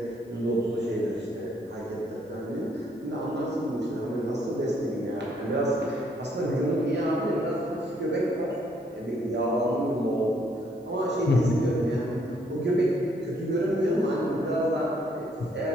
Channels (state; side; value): normal; both; correlation 0.68